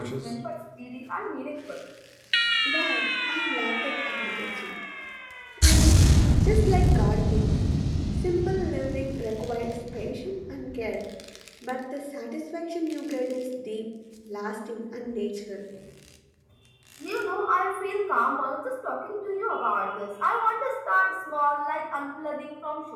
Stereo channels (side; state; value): both; identical; correlation 1.00